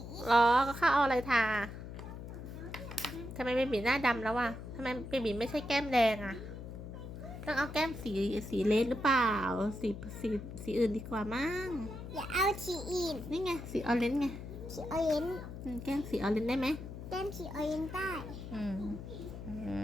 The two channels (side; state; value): left; noise; hum, 10 dB below the sound